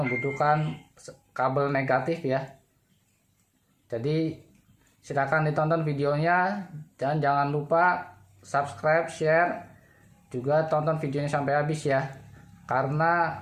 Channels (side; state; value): both; identical; correlation 1.00